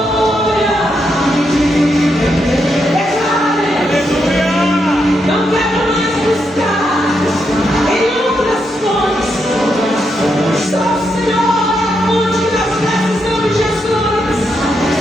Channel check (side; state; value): both; normal; correlation 0.81